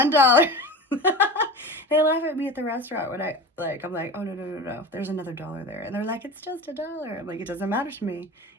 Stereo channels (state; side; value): normal; both; correlation 0.31